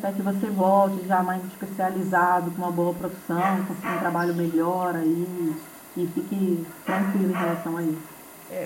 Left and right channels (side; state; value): both; identical; correlation 1.00